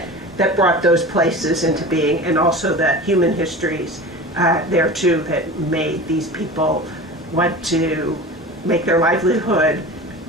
brought those places into being, and also the human histories there too that made these people want to make their livelihood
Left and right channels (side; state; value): both; normal; correlation 0.34